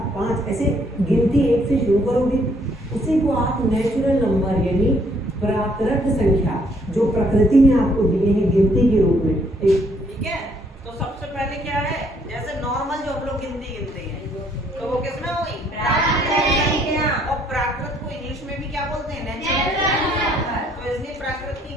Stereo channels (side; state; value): both; normal; correlation 0.67